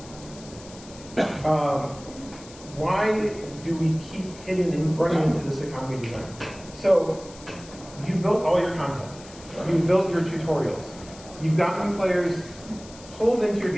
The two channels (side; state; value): left; noise; hiss, 19 dB below the sound